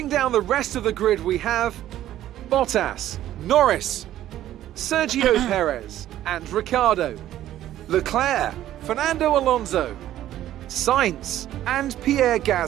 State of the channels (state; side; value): quieter; left; 12.9 dB